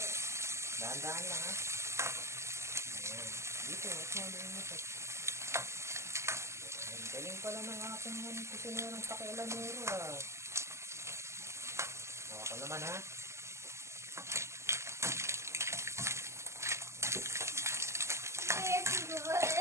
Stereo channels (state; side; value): late; left; 0.13 ms